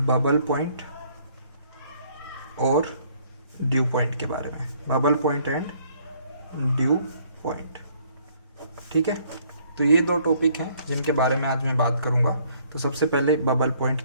बबल पॉइंट और ड्यू पॉइंट के बारे में। Bubble point and dew point, ठीक है। तो ये दो टॉपिक हैं जिनके बारे में आज मैं बात करूँगा। तो सबसे पहले बबल पॉइंट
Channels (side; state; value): both; inverted; correlation -0.63